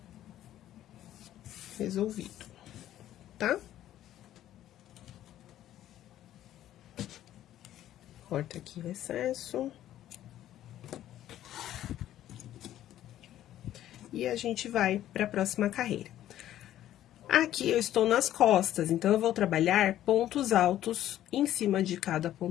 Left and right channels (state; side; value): quieter; right; 12.6 dB